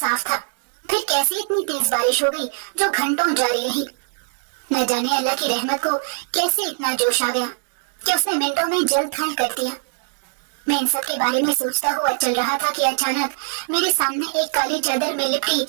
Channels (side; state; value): left; silent; digital silence